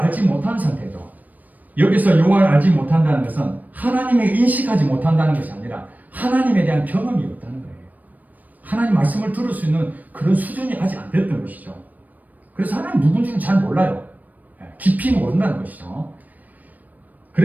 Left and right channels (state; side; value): late; left; 0.081 ms